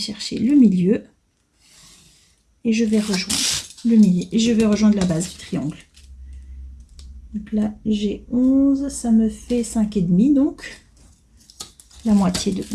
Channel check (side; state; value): both; identical; correlation 1.00